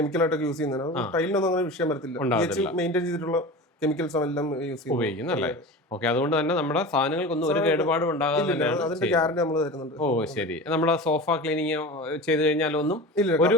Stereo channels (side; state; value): both; normal; correlation 0.32